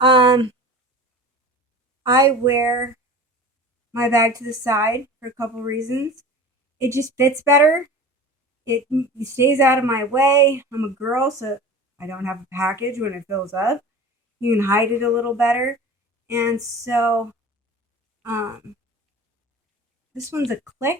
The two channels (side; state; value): both; normal; correlation 0.37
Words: I wear my bag to the side for a couple reasons. It just fits better. It stays out of my way. I'm a girl, so I don't have a package when it fills up. You can hide it a little better. And so this one's a